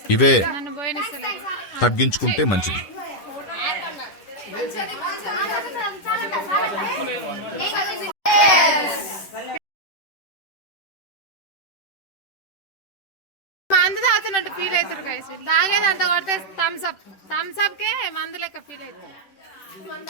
ఇవే నన్ను పోయినస్తలేదు. తగ్గించుకుంటే మంచిది. మందు తాగుతున్నట్టు ఫీల్ అవుతారు గైస్. తాగేది అంత కొడితే థమ్స్ అప్ కే మందు లెక్క ఫీల్ అవుతుంది.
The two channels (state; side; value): late; right; 10 ms